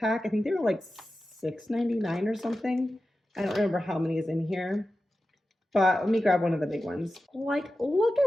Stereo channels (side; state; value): both; normal; correlation 0.93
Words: I think they were like $6.99 or something. I don't remember how many is in here. But let me grab one of the big ones. Like, look